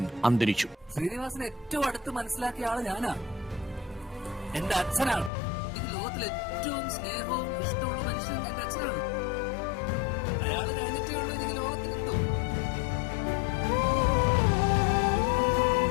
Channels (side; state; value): right; drops out; at 5.3 s